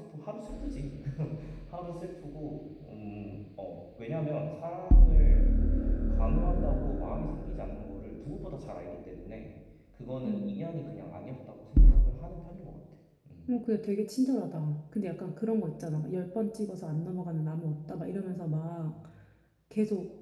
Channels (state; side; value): identical; both; correlation 1.00